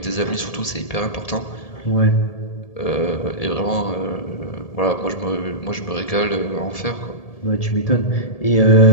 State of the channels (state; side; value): late; right; 1.7 ms